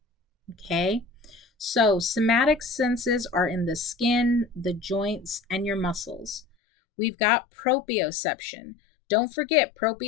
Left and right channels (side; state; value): right; drops out; at 6.5 s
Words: Okay? So, somatic senses are in the skin, the joints, and your muscles. We've got proprioception. Don't forget,